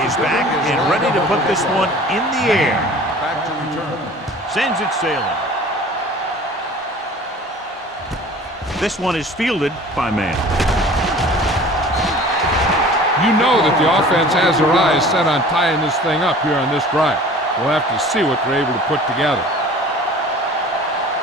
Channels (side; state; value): both; normal; correlation 0.45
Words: is back and ready to put this one in the air. Back to return. Sends it sailing. This one is fielded by man. You know that the offense has their eyes set on tying this thing up here on this drive. We'll have to see what they're able to put together.